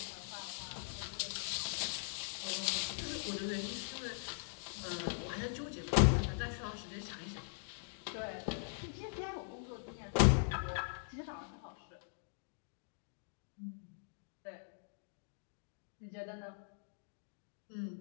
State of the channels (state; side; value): silent; right; digital silence